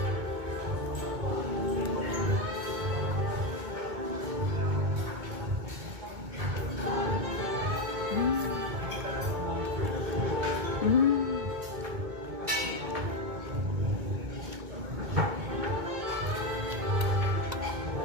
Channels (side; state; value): left; late; 2.2 ms